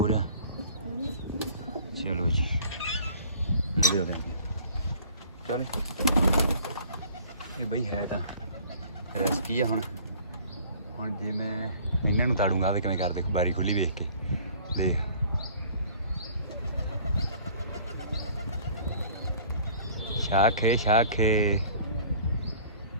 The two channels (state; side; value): inverted; both; correlation -0.50